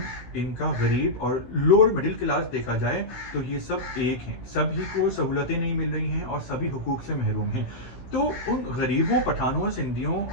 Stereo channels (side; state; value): right; late; 15 ms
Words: ان کا غریب اور لوور مڈل کلاس دیکھا جائے تو یہ سب ایک ہیں، سبھی کو سہولتیں نہیں مل رہی ہیں اور سبھی حقوق سے محروم ہیں۔ تو ان غریبوں، پٹھانوں، سندھیوں